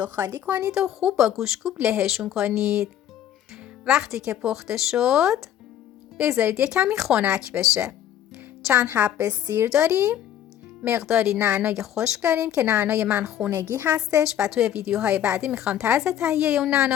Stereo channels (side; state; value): right; quieter; 10.8 dB